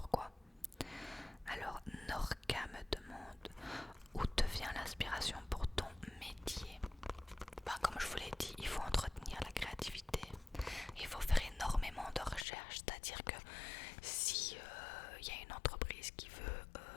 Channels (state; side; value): drops out; right; at 12.5 s